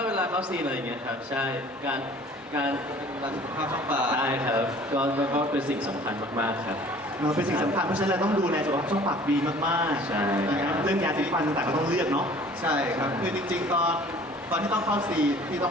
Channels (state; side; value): normal; both; correlation 0.50